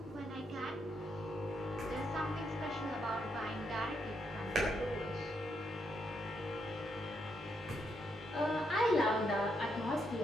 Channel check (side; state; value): both; normal; correlation 0.78